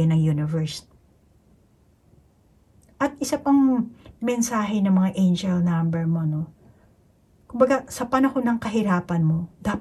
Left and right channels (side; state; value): both; identical; correlation 1.00